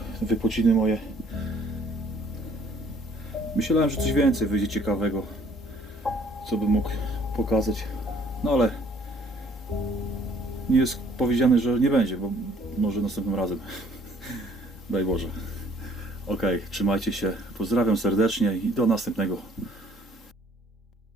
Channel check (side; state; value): both; normal; correlation 0.60